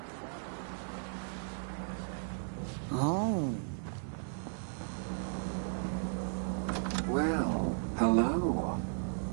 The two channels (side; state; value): left; silent; digital silence